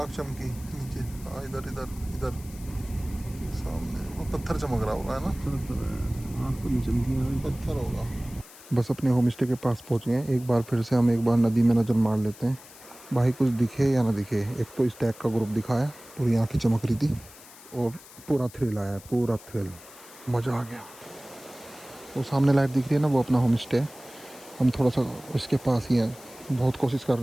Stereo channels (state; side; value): noise; left; hiss, 20 dB below the sound